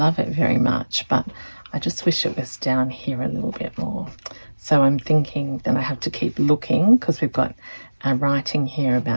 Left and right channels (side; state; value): both; inverted; correlation -1.00